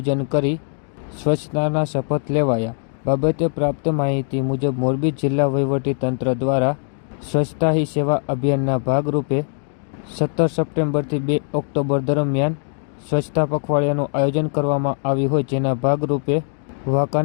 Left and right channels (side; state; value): right; silent; 57 dB below the other